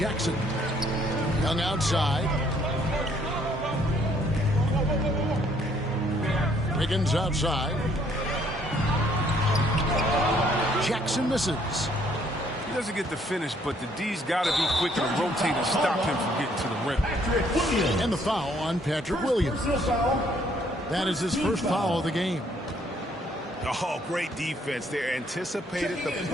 Young outside. Wiggins outside. Jackson misses. He doesn't get the finish, but the D's got to be quick to rotate and stop him from getting to the rim. And the foul on Patrick Williams. That is his first foul of the game. Oh, great defense there. Anticipated the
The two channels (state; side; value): normal; both; correlation 0.65